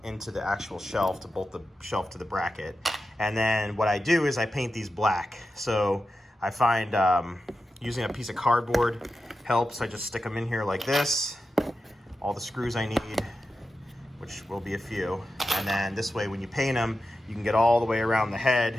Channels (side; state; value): both; normal; correlation 0.91